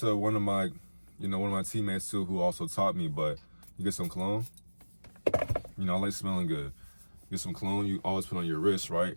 one of my teammates too, who also taught me, but you get some cologne. I like smelling good. Get some cologne, you always put on your wrist, right?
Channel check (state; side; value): inverted; both; correlation -1.00